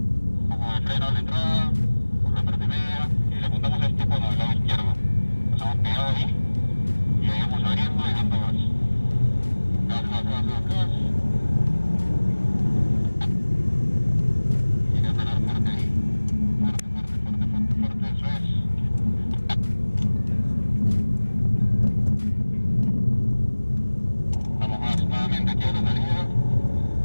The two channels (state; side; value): inverted; both; correlation -1.00